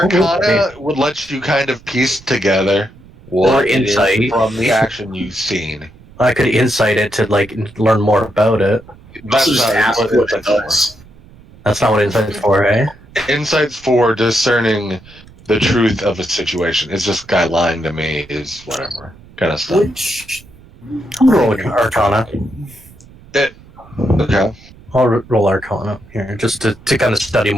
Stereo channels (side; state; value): right; noise; rumble, 23 dB below the sound